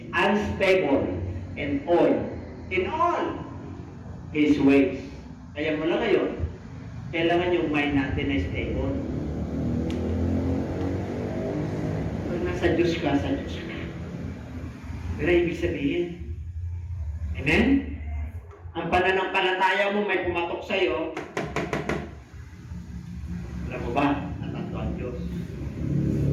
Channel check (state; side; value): identical; both; correlation 1.00